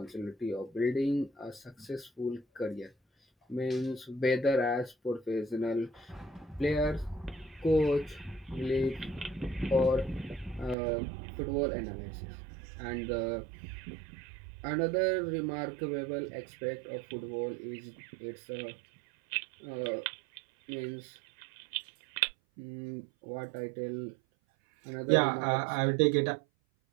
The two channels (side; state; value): left; drops out; at 10.8 s